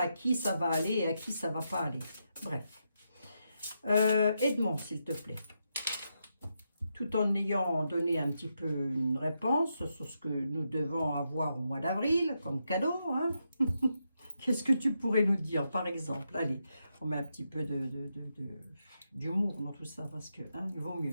qui ça va aller et à qui ça ne va pas aller. Bref. Edmond, s'il te plaît. Tout en ayant donné un petit peu une réponse sur ce que nous devons avoir au mois d'avril comme cadeau. Hein. Qu'est-ce que tu pourrais nous dire, par exemple? Allez, on met un petit peu d'humour dans tout ça, parce que hein, il vaut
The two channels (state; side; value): inverted; both; correlation -0.84